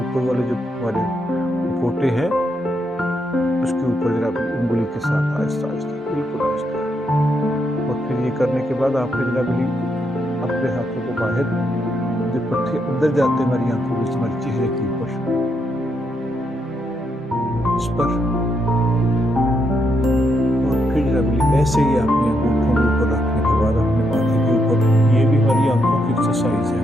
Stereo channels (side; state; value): both; normal; correlation 0.79